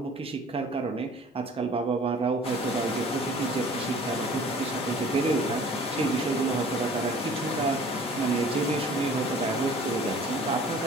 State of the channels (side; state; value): both; normal; correlation 0.49